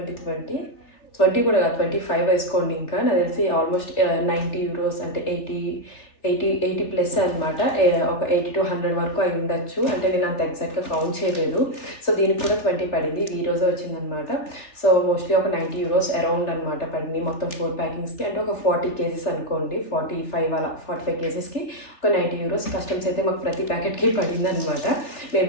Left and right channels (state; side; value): late; right; 3.4 ms